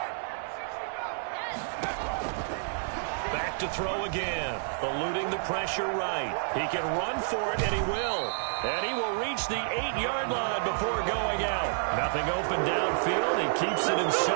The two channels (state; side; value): silent; left; digital silence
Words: Back to throw again. Eluding the pressure right. He can run for it, and he will. And he will reach the 8-yard line before going out. Nothing open downfield. He keeps it